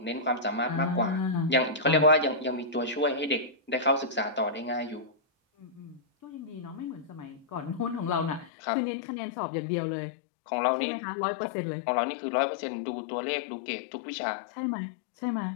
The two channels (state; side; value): drops out; right; at 8.5 s